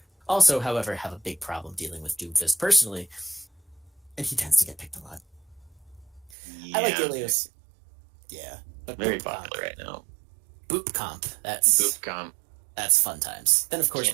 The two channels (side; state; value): left; drops out; at 6.3 s